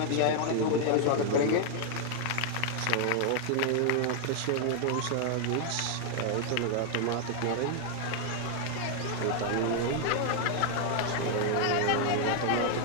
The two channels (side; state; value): both; different; correlation 0.00